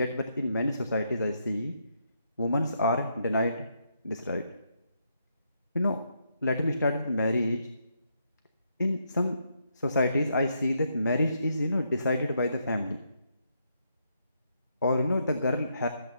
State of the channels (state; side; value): inverted; both; correlation -0.78